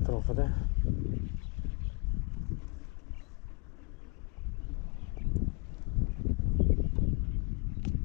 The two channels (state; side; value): quieter; right; 32.1 dB